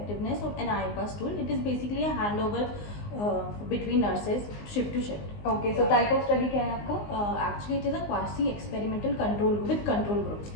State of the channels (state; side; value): late; right; 19 ms